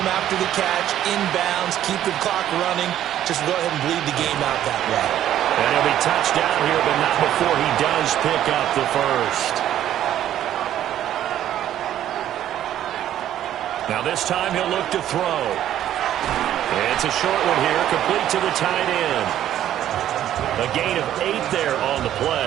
after the catch, inbounds, keep the clock running. Just go ahead and bleed the game out that way. And he'll be touched down here, but not before he does pick up the first. Now this time he'll look to throw. It's a short one here, complete to the tight end. A gain of 8 there on the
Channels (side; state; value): left; quieter; 11.7 dB